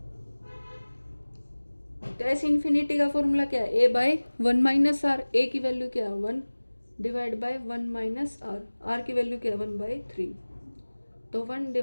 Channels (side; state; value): both; inverted; correlation -1.00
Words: तो एस इंफिनिटी का फॉर्मूला क्या है, A/1 माइनस आर। ए की वैल्यू क्या है 1 divide by 1 minus R. R की वैल्यू क्या है 1/3। तो 1